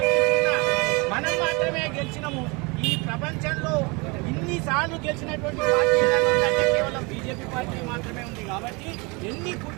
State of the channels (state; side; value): quieter; left; 27.9 dB